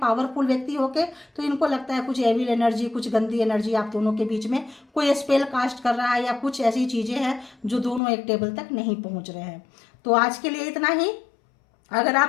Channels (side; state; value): right; drops out; at 8.0 s